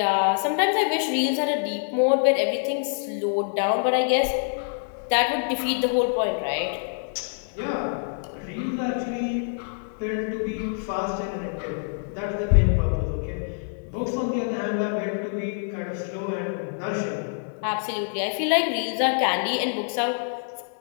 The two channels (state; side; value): silent; right; digital silence